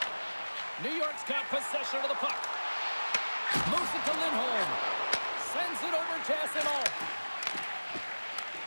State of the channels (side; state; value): both; inverted; correlation -1.00